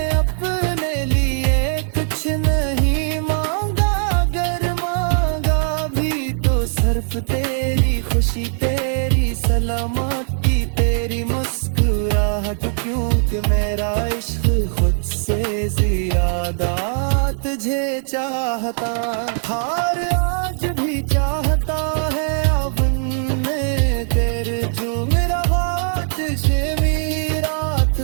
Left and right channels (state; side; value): silent; left; 66 dB below the other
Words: अपने लिए कुछ नहीं मांगा, अगर मांगा भी तो सिर्फ तेरी खुशी, तेरी सलामती, तेरी मुस्कुराहट, क्योंकि मेरा इश्क खुद से ज्यादा तुझे चाहता। हार आज भी चाहता है अवन में तेरे, जो मेरा हाथ से रात